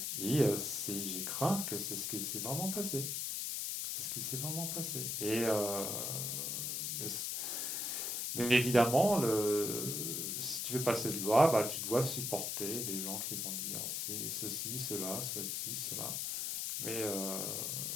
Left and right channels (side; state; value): left; noise; hiss, 1 dB below the sound